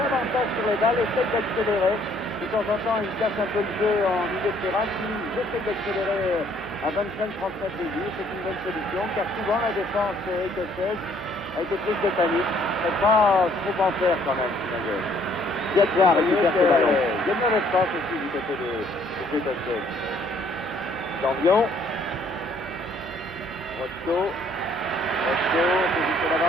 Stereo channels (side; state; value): both; normal; correlation 0.63